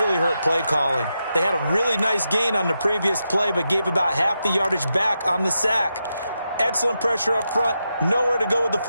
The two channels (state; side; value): inverted; both; correlation -0.86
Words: hurt play calling. They had a really nice gain on the previous play, but gave about half the yardage back on the sack. Excellent pressure up front. Nowhere to go with the